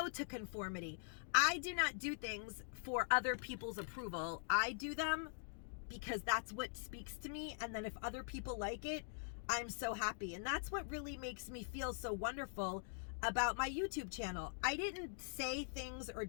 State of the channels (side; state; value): right; silent; digital silence